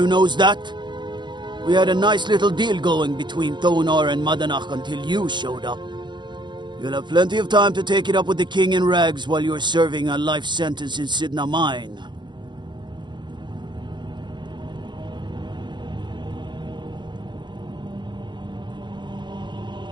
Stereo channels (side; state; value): left; late; 0.22 ms